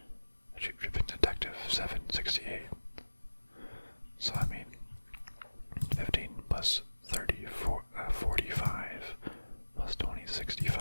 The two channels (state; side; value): inverted; both; correlation -1.00